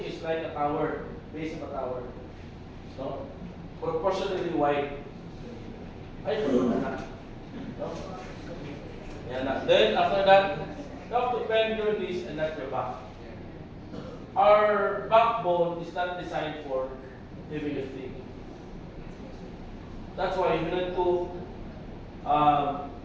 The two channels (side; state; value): both; identical; correlation 1.00